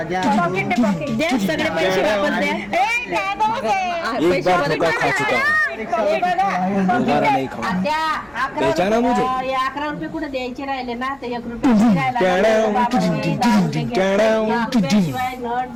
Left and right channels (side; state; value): left; noise; hum, 30 dB below the sound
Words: दे सगळे पैसे वापस द्या. बेचाना मुझे 11 रुपये कुठे द्यायचे राहिले ना ते 1 रुपये शिवाय नट